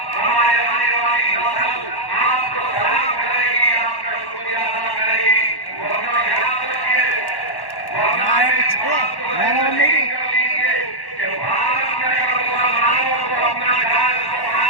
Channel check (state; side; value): late; right; 1.1 ms